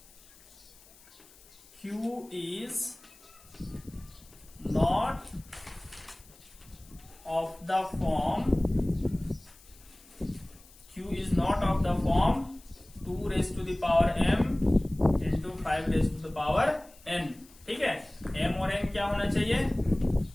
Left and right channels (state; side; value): noise; left; hiss, 25 dB below the sound